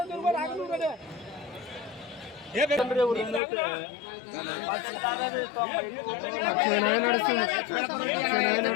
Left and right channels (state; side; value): drops out; right; at 3.4 s